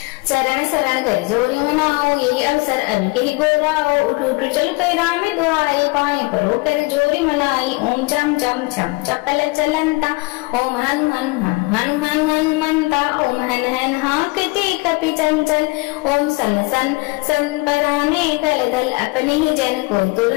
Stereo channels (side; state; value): right; quieter; 25.9 dB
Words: चरण शरण कर जोरी मनाओ यही अवसर अभी के ही गोराओ। उठ उठ चल कई राम दुआई पाए परो कर जोरी मनाई। ओम चम चम छम चपल चलंता ओम हन हन हन हन हन हनुमंता। ओम हन हन हाकते कपि चंचल ओम सन सन सन पराने कल दल अपने ही जन को